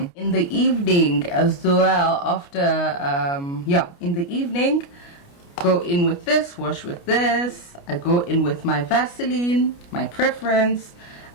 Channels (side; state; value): right; late; 29 ms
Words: In the evening as well, after in the evening, go in with this, wash with this. I go in with my Vaseline, my preference.